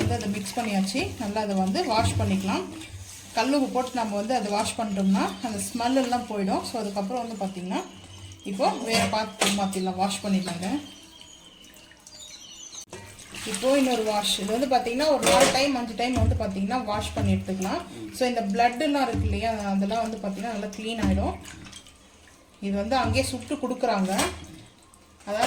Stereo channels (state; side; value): identical; both; correlation 1.00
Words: அதை மிக்ஸ் பண்ணியாச்சு. நல்லா அதை வந்து வாஷ் பண்ணிக்கலாம். கல் உப்பு போட்டு நம்ம வந்து அதை வாஷ் பண்ணிட்டோம்னா அந்த ஸ்மெல் எல்லாம் போயிடும். ஸோ அதுக்கப்புறம் வந்து பார்த்தீங்கன்னா இப்போ வேறு பாத்திரம் மாற்றிடலாம், வாஷ் பண்ணிடலாங்க. இப்போ இன்னொரு வாஷ், இது வந்து பார்த்தீங்கன்னா ஒரு 4 டைம் 5 டைம் வந்து பார்த்தீங்கன்னா வாஷ் பண்ணி எடுத்துக்கலாம். ஸோ இந்த பிளட்டுலாம் இருக்கு இல்லையா, அதெல்லாம் வந்து பார்த்தீங்கன்னா நல்லா க்ளீன் ஆகிடும். இது வந்து அங்கேயே சுட்டு கொடுக்குறாங்க.